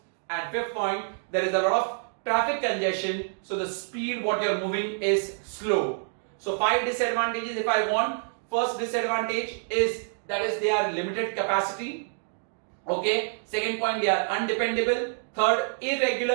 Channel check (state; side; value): silent; left; digital silence